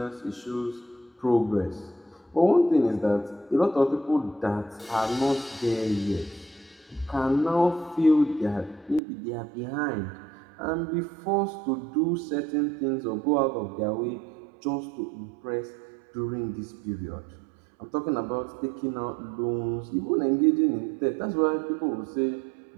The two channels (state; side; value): drops out; left; at 9.0 s